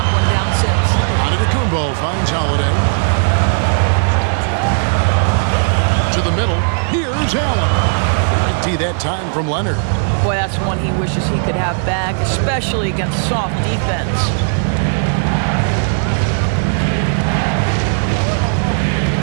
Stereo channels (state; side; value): silent; left; digital silence